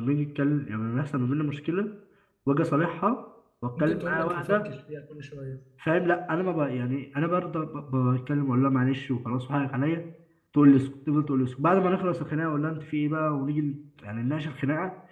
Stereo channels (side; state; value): both; identical; correlation 1.00